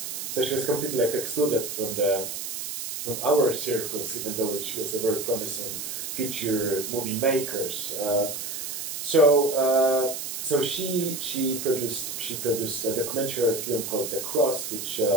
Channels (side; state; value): right; noise; hiss, 6 dB below the sound